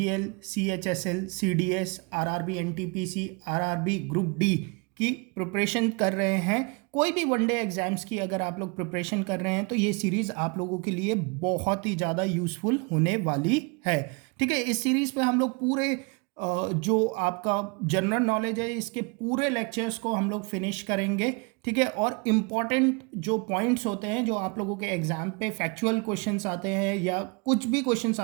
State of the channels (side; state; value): left; quieter; 31.6 dB